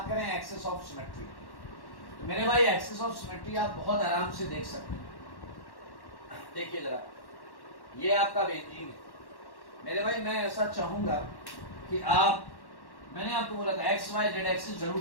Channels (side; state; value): right; late; 1.1 ms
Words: करें एक्सिस ऑफ सिमेट्री, तो मेरे भाई एक्सिस ऑफ सिमेट्री आप बहुत आराम से देख सकते हैं। देखिए जरा, ये आपका बेंजीन है मेरे भाई। मैं ऐसा चाहूंगा कि आप, मैंने आपको बोला था एक्स वाई जेड एक्सिस